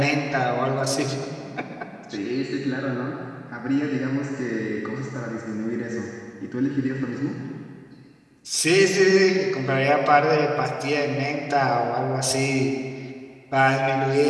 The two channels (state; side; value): identical; both; correlation 1.00